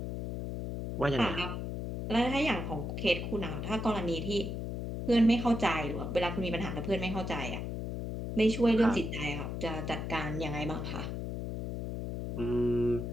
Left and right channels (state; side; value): noise; left; hum, 4 dB below the sound